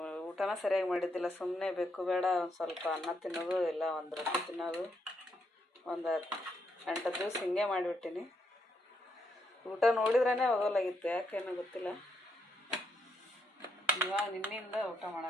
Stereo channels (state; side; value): normal; both; correlation 0.78